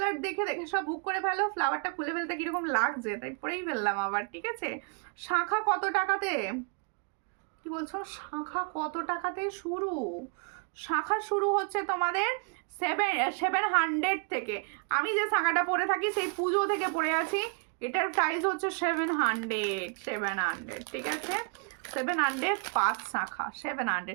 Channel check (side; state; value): left; quieter; 38.2 dB